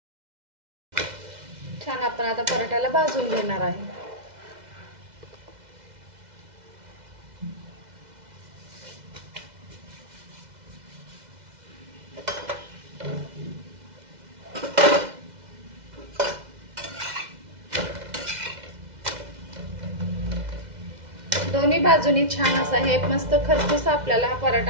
छान आपण आता पराठ्याला भाजून घेणार आहे। दोन्ही बाजूनी छान असा हे मस्त खरपूस आपल्याला हा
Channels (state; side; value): late; left; 2.0 ms